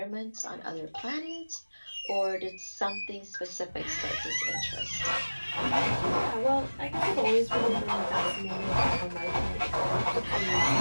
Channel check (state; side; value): inverted; both; correlation -1.00